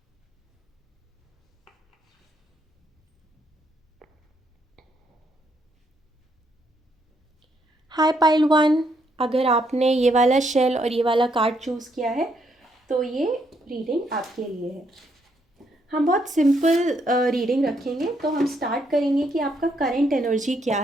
Hi pile 1, अगर आपने ये वाला शेल और ये वाला कार्ड चूज़ किया है तो ये रीडिंग आपके लिए है। हम बहुत सिंपल रीडिंग रखेंगे। तो हम स्टार्ट करेंगे कि आपका करंट एनर्जी क्या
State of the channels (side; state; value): both; normal; correlation 0.74